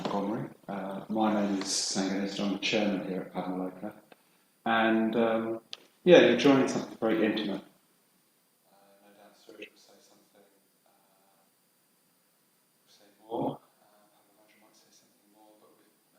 My name is Sanganis, I'm the chairman here at Padmaloka, and you're joining something very intimate. No doubt Suresh will say something, more. Michael's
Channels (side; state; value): both; identical; correlation 1.00